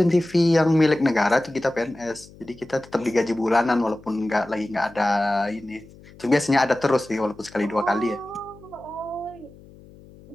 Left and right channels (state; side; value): noise; left; hum, 22 dB below the sound